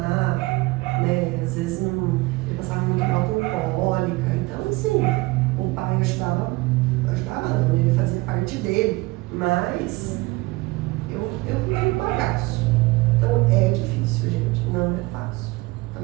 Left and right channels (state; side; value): quieter; left; 21.8 dB